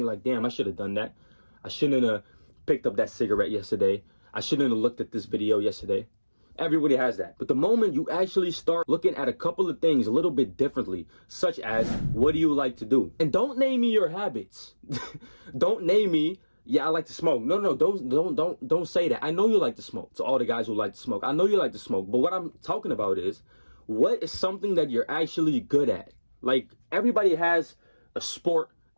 like, damn, I should have done that. I shouldn't have picked up that cigarette yesterday. I shouldn't have looked at this video yesterday. Everybody has that. But the moment you actually start looking at a couple of things a little bit differently, such as, what do you like to do? And don't name me your habits. Don't name me, yeah, I like to smoke. No, don't say that. I know you like to smoke. To all the guys who like to smoke, I know you like to smoke. But what I'm talking about is, what is something that you're actually good at? Like, everybody has a sport,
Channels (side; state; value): both; inverted; correlation -1.00